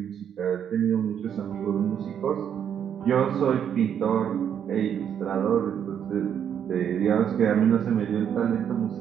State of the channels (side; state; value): left; quieter; 8.7 dB